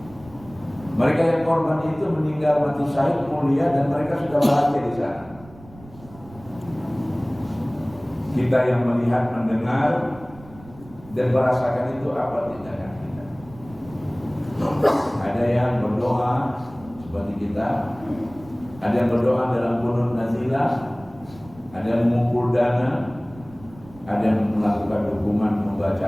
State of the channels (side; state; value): right; noise; rumble, 21 dB below the sound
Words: Mereka yang korban itu meninggal mati syahid mulia dan mereka sudah bahagia di sana. Kita yang melihat, mendengar dan merasakan itu apa tindakan kita? Ada yang berdoa seperti kita, ada yang berdoa dalam qunut nazilah, ada yang mengumpul dana, ada yang melakukan dukungan membaca